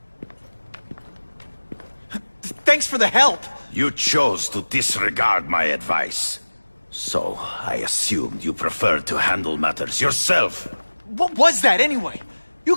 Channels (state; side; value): inverted; both; correlation -1.00